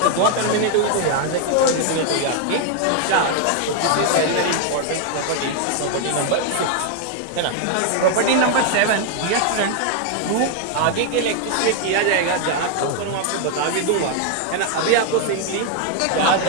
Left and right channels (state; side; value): different; both; correlation 0.00